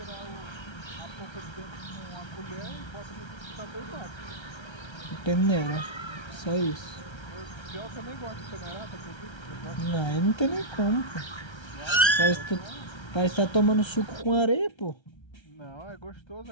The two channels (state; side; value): late; right; 1.3 ms